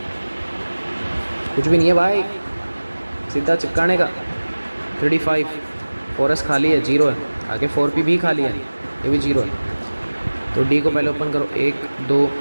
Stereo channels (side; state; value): both; inverted; correlation -1.00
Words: कुछ भी नहीं है भाई, सीधा चिपकाने का। 35, 4s खाली है, 0 है, आगे 4p भी खाली है, ये भी 0 है। तो D को पहले ओपन करो, 1 2